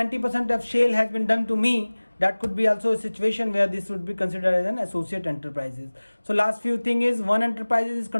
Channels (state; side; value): inverted; both; correlation -1.00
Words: of sale has been done to me, that could be also a situation where this would be considered as an associate enterprises. So last few thing is, one enterprise is